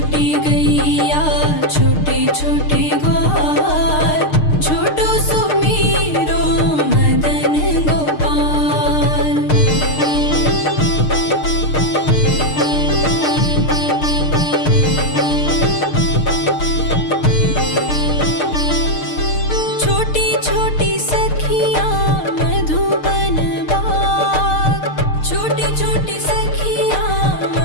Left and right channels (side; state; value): right; late; 6.6 ms